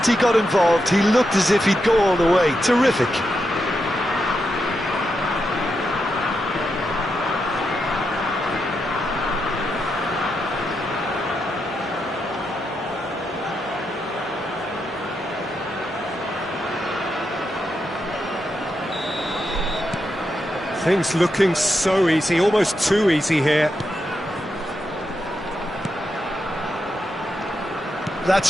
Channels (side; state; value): both; normal; correlation 0.85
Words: he got involved, he looked as if he'd go all the way. Terrific. Things looking so easy, almost too easy here.